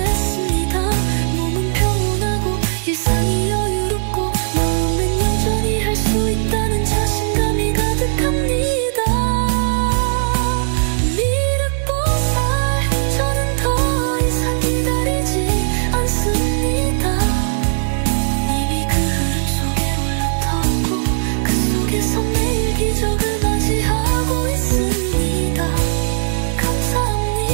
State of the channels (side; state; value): left; silent; digital silence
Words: 몸은 평온하고 일상이 여유롭고 마음엔 여전히 할 수 있다는 자신감이 가득합니다. 미륵보살, 저는 더 이상 기다리지 않습니다. 이미 그 흐름 속에 올라탔고 그 속에서 매일 기적을 맞이하고 있습니다.